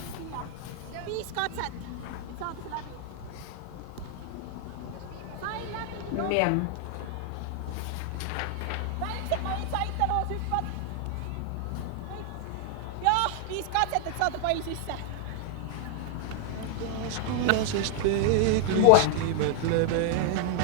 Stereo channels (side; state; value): both; different; correlation 0.00